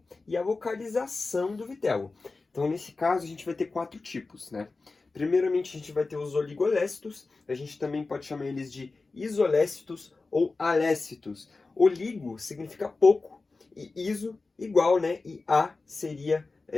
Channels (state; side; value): quieter; right; 3.8 dB